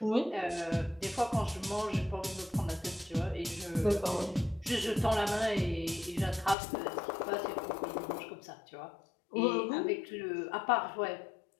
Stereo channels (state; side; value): drops out; right; at 6.6 s